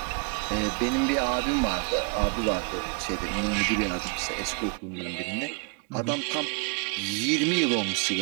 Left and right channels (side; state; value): left; quieter; 35.9 dB